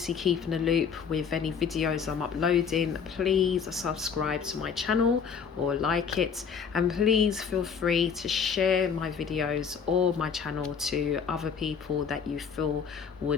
keep in the loop with any videos I'm uploading, please subscribe to my channel or like it, and please feel free to share my videos or my channel to other people that you feel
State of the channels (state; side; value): quieter; right; 6.5 dB